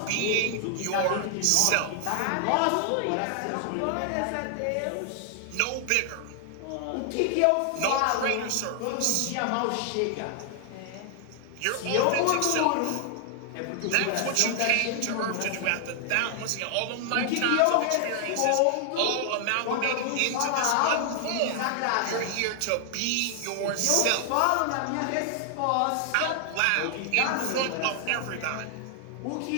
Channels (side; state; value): both; different; correlation 0.00